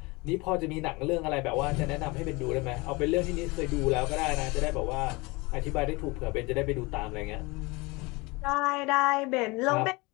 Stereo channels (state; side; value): quieter; right; 24.9 dB